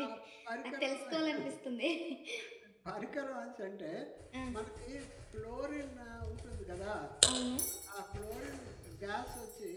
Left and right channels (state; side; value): identical; both; correlation 1.00